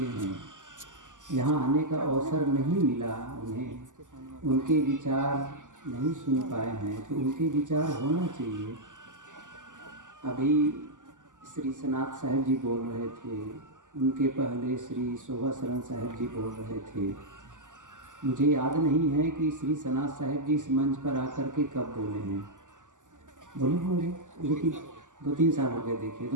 हैं, यहाँ आने का अवसर नहीं मिला उन्हें, उनके विचार नहीं सुन पाए हैं, तो उनके विचार होना चाहिए। अभी श्री सनात साहिब जी बोल रहे थे, उनके पहले श्री शोभा शरण साहिब जी बोल रहे थे। मुझे याद नहीं है कि श्री सनात साहिब जी इस मंच पर आकर के कब बोले हैं, बोले होंगे, लेकिन 2-3 साल हो गए। देखिए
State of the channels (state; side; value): late; left; 0.87 ms